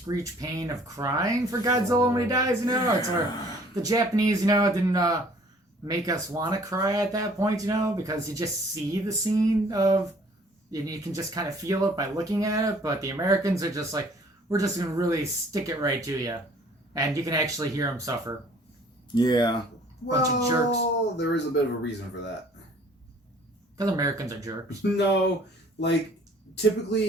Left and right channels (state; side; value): normal; both; correlation 0.55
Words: pain of crying for Godzilla when he dies, it's where the Japanese, didn't make us want to cry at that point, because you just see the scene of, and you can just kind of feel it by looking at it. But the Americans are just like, we're just going to really stick it right to you, and you can actually hear them suffer. Yeah. Bunch of jerks. There is a bit of a reason for that. Because Americans are jerks. No, like,